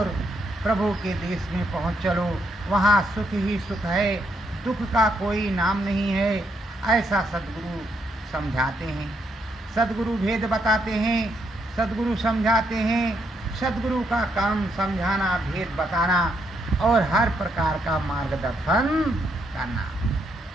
प्रभु के देश में पहुँच चलो। वहाँ सुख ही सुख है, दुख का कोई नाम नहीं है। ऐसा सद्गुरु समझाते हैं, सद्गुरु भेद बताते हैं, सद्गुरु समझाते हैं। सद्गुरु का काम समझाना, भेद बताना और हर प्रकार का मार्गदर्शन करना।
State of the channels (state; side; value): normal; both; correlation 0.76